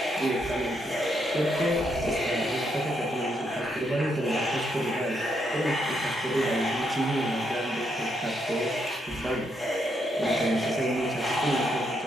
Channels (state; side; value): normal; both; correlation 0.77